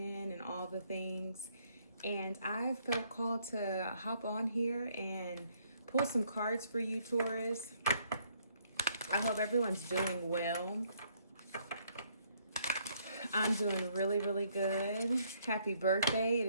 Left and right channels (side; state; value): both; inverted; correlation -0.68